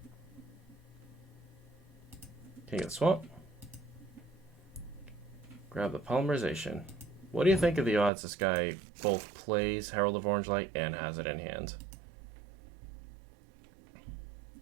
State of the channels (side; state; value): left; drops out; at 8.1 s